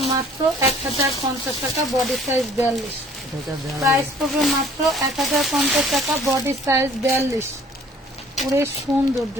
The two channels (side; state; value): both; normal; correlation 0.54